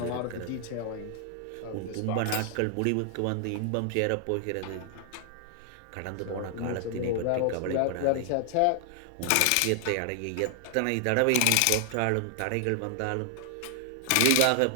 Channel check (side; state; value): both; different; correlation 0.00